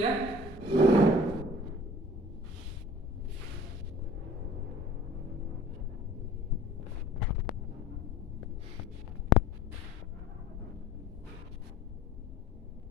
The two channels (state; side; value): normal; both; correlation 0.47